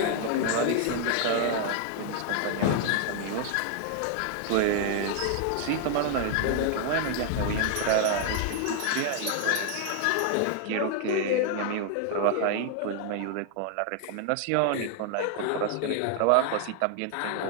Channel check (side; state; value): both; different; correlation 0.00